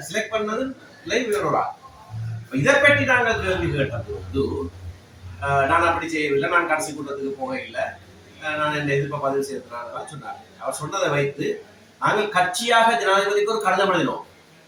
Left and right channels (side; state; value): both; identical; correlation 1.00